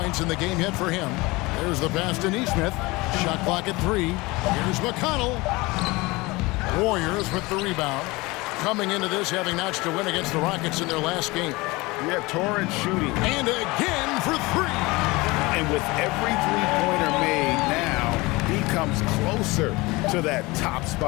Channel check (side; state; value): right; quieter; 22.8 dB